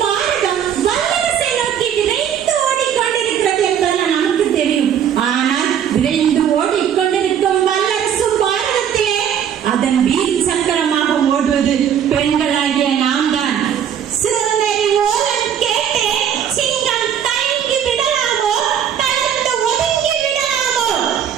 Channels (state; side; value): quieter; left; 8.9 dB